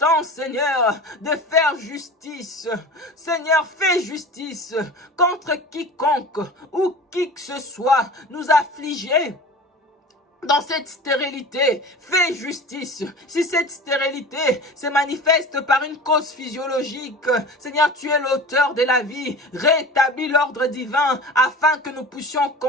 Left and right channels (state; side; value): normal; both; correlation 0.36